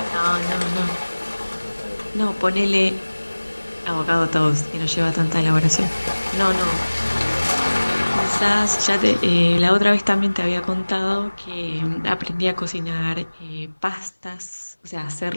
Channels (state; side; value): inverted; both; correlation -1.00